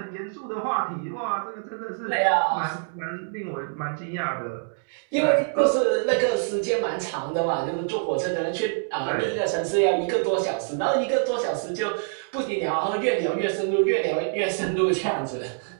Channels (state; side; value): silent; left; 61 dB below the other